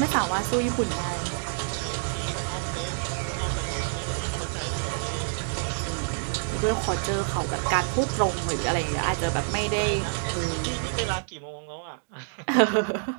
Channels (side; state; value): left; silent; digital silence